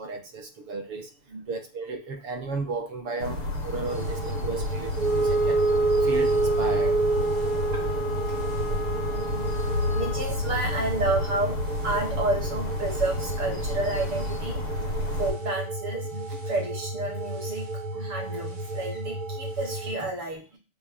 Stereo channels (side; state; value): left; late; 6.8 ms